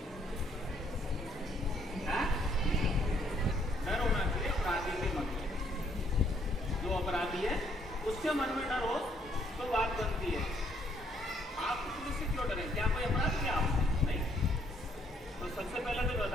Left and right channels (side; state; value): both; normal; correlation 0.68